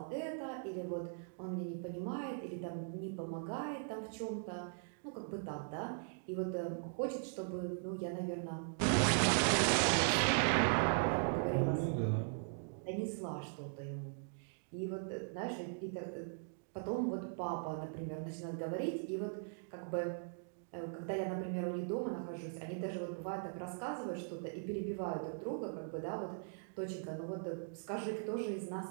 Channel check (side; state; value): left; silent; digital silence